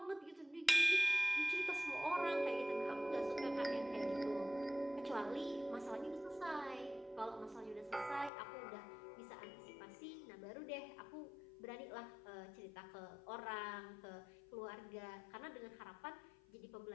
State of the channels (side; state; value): right; drops out; at 8.3 s